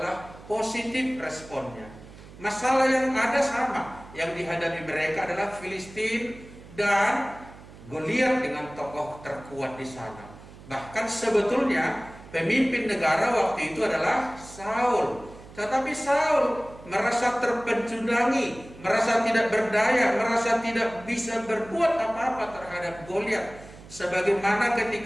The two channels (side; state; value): right; noise; hum, 19 dB below the sound